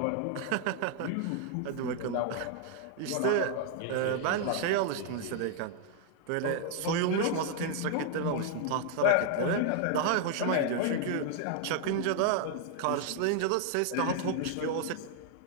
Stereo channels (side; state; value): both; different; correlation 0.00